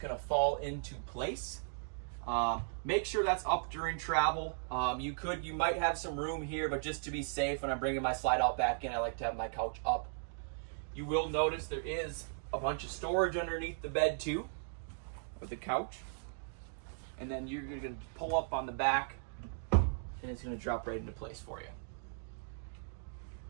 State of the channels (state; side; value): silent; left; digital silence